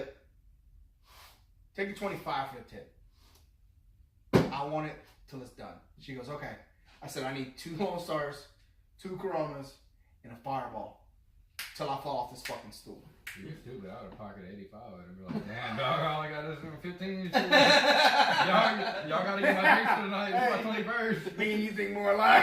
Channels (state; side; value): identical; both; correlation 1.00